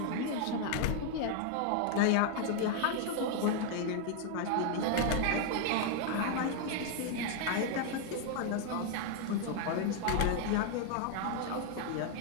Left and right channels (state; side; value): different; both; correlation 0.00